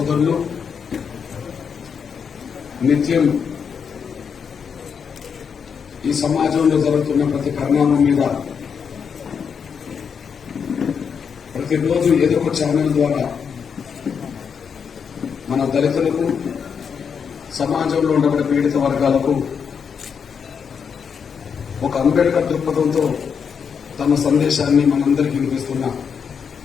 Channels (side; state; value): right; quieter; 6.6 dB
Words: నిత్యం ఈ సమాజంలో జరుగుతున్న ప్రతి పరిణామం మీద ప్రతిరోజు ఏదో ఒక ఛానల్ ద్వారా మన దళితులకు, సమాజంలో ఉండబడే పీడిత వర్గాలకు ఒక అంబేద్కర్ దృక్పథంతో తమ సందేశాన్ని మనందరికీ వినిపిస్తున్న